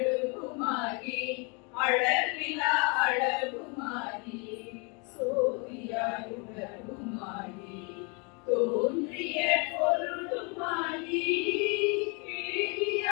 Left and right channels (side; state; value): right; quieter; 33.3 dB